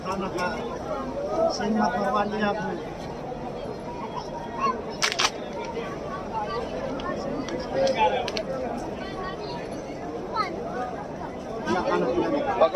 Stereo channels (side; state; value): both; identical; correlation 1.00